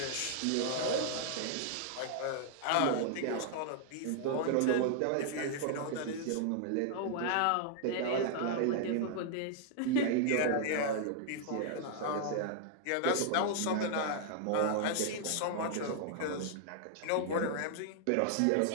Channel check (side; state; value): both; different; correlation -0.01